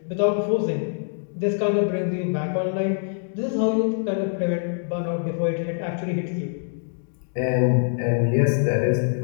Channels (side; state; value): right; silent; digital silence